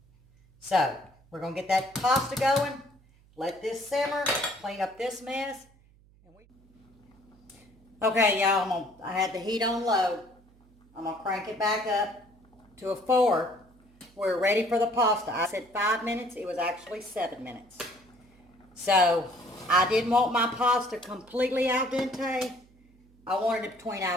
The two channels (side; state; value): right; noise; hum, 29 dB below the sound